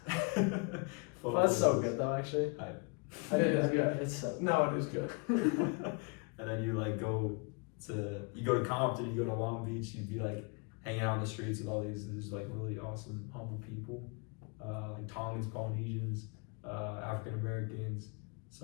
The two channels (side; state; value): right; quieter; 32.1 dB